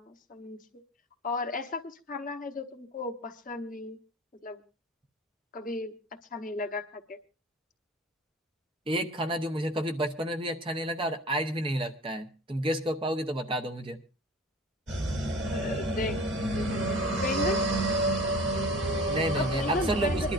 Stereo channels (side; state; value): both; normal; correlation 0.42